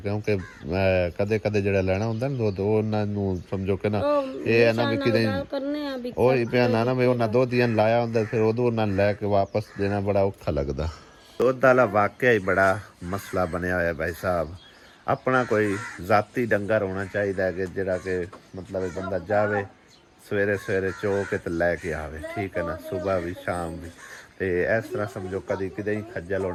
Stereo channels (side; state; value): both; identical; correlation 1.00